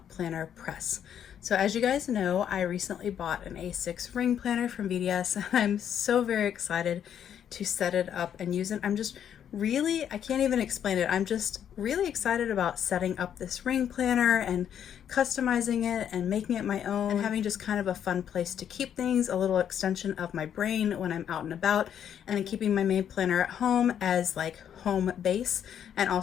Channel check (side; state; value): right; quieter; 9.2 dB